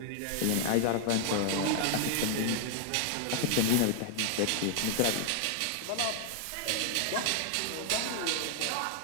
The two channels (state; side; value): different; both; correlation 0.00